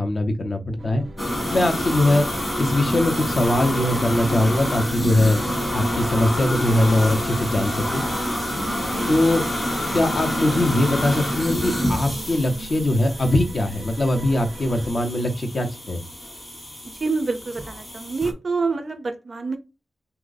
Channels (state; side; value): normal; both; correlation 0.91